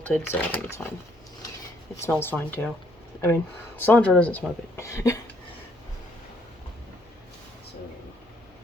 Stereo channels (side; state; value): both; normal; correlation 0.67